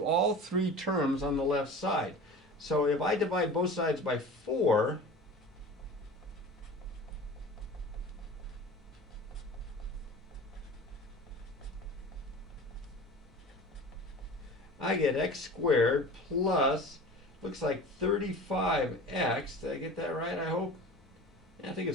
all 3 terms on the left side. So if I divide both sides by 4, I get x squared plus, looks like 35x. Did I get that right, I hope? Yeah, I think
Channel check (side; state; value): both; normal; correlation 0.37